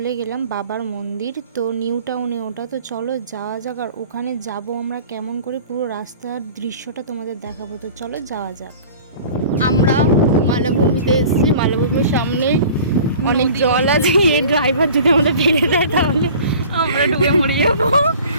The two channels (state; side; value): inverted; both; correlation -0.44